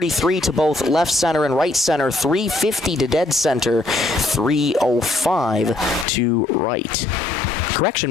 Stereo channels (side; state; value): right; drops out; at 6.1 s